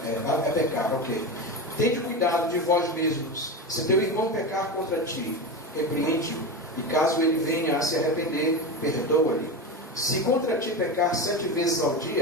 pecar, ok. Tende cuidado de vós mesmos. Se teu irmão pecar contra ti, repreende-o, e caso ele venha a se arrepender, perdoa-lhe. Se contra ti pecar 7 vezes ao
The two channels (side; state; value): both; normal; correlation 0.21